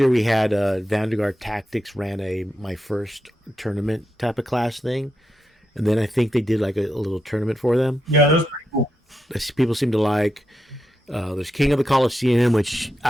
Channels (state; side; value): normal; both; correlation 0.85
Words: we had Vanguard Tactics ran my first tournament type of class thing, and then I think they did like a little tournament for them. Yeah, that was pretty cool. People seem to like. There's King of the Colosseum, which